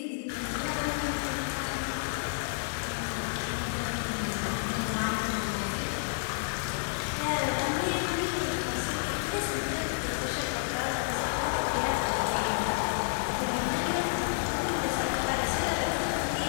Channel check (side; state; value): right; silent; digital silence